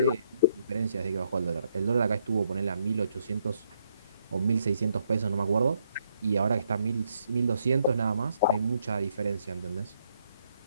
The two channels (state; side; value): inverted; both; correlation -0.74